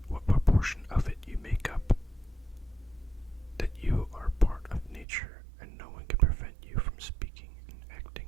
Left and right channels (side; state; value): left; drops out; at 5.1 s